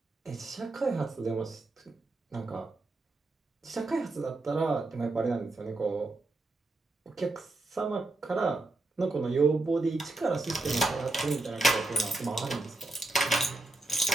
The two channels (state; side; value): quieter; left; 3.0 dB